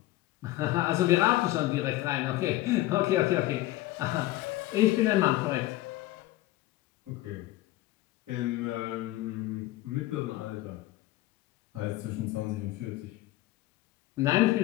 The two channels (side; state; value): right; quieter; 16.7 dB